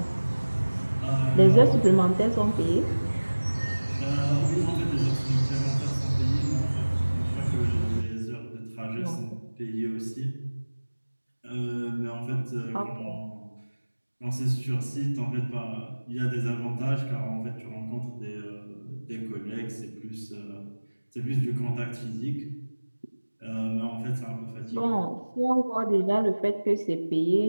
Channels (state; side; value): inverted; both; correlation -1.00